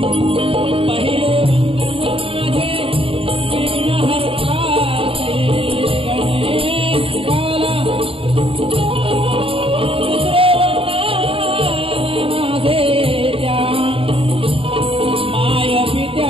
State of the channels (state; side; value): late; left; 0.27 ms